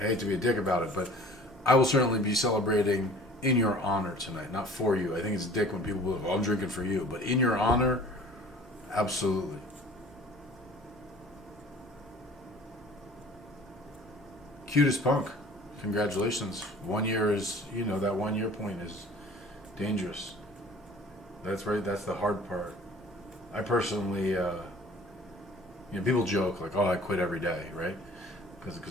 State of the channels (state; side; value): normal; both; correlation 0.48